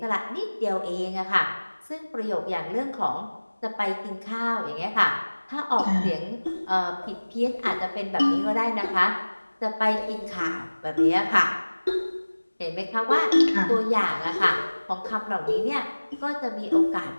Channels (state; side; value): inverted; both; correlation -1.00